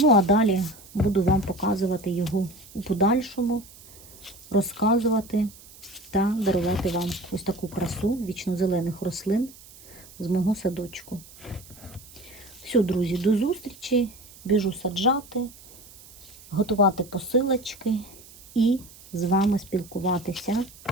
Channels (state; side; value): noise; right; hiss, 21 dB below the sound